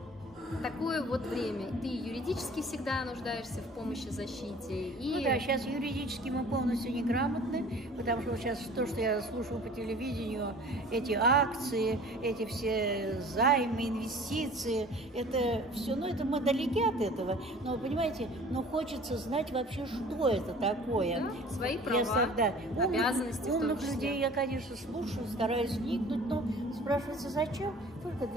Такое вот время. Ты юридически всегда нуждаешься в помощи, защите. И... Ну да, сейчас юридически мы полностью неграмотны, потому что вот сейчас то, что я слушаю по телевидению, эти акции, эти все займы, инвестиции, это все, ну это мы далеки от этого, но вы понимаете, но хочется знать вообще, что это такое. Да, свои права, Да, обязанности в том умных числе. людей я, конечно, слушаю, стараюсь вникнуть, но спрашивается, зачем? Только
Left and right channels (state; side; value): normal; both; correlation 0.47